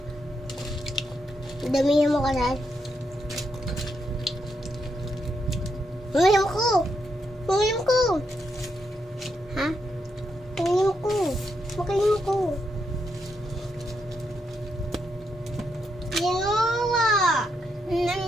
Damihan mo ka na. Uminom ko! Uminom ko! Ha? Uminom ko! Makalim ko! Ginawa!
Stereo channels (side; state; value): both; normal; correlation 0.81